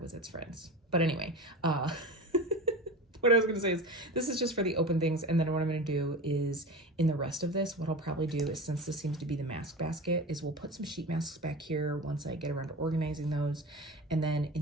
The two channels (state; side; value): normal; both; correlation 0.30